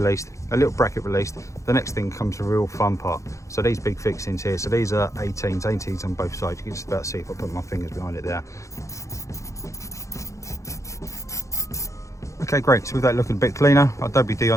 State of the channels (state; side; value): late; right; 0.15 ms